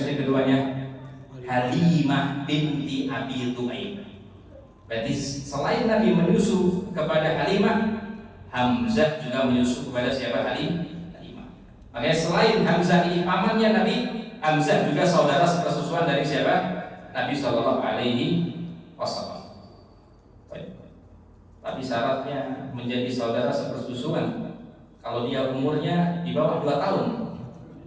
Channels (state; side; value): identical; both; correlation 1.00